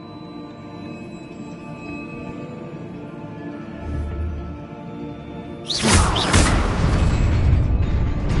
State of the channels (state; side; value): identical; both; correlation 1.00